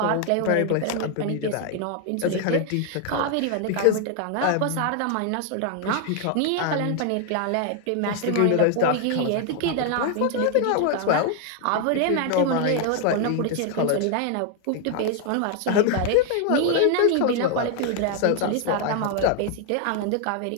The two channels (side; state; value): both; different; correlation 0.00